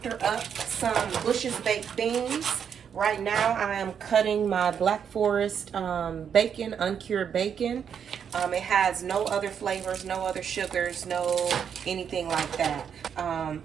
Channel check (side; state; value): left; quieter; 7.7 dB